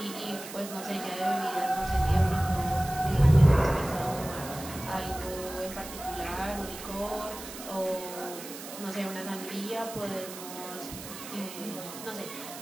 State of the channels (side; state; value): right; noise; hiss, 12 dB below the sound